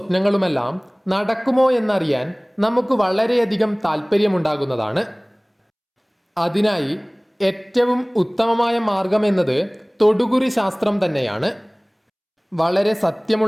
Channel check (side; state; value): both; identical; correlation 1.00